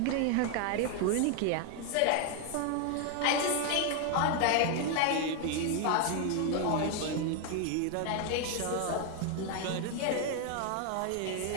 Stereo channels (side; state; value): both; different; correlation 0.01